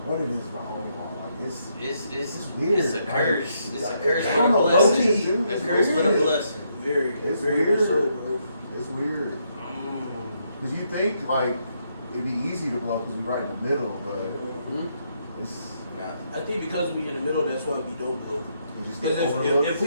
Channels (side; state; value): both; inverted; correlation -0.76